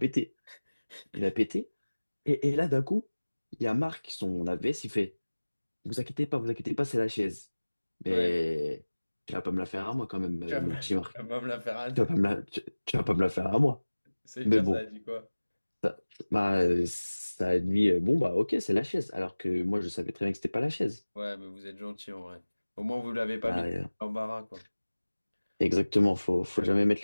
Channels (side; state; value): both; inverted; correlation -1.00